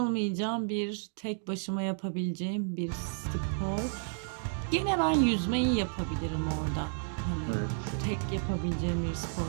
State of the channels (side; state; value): left; silent; digital silence